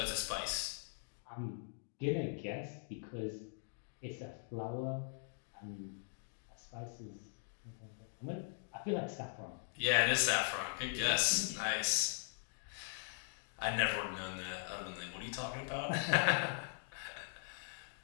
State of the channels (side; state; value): right; silent; digital silence